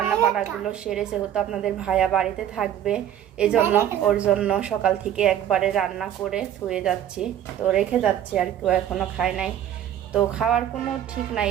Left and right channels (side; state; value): left; quieter; 10.8 dB